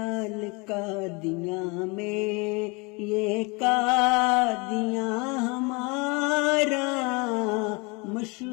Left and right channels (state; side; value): quieter; right; 28.6 dB